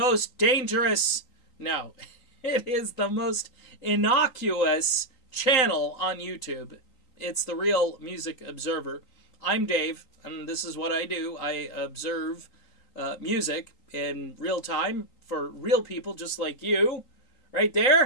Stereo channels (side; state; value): right; late; 3.9 ms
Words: dangerous, no, it is the most innocuous channel on YouTube. It's The Real Music Observer. I'm Dave, and this is what I do. I observe music in real time for real people just like you, right